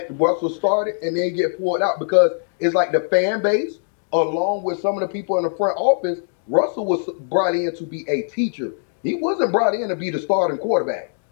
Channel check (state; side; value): silent; right; digital silence